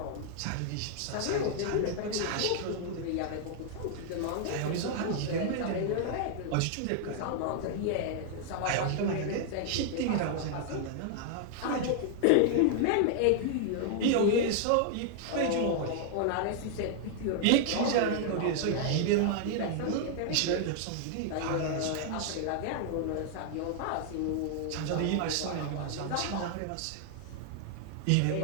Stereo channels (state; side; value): different; both; correlation 0.00